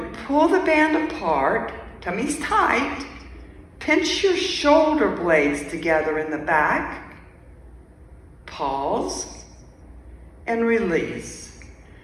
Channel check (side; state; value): both; identical; correlation 1.00